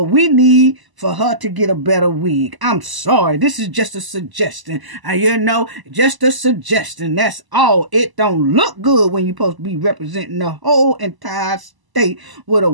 we need for her to get a better wig. I'm sorry. This is just a suggestion. Just a suggestion. That's all. It don't look good when you're supposed to be representing the whole entire state with a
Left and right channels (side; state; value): left; late; 1.0 ms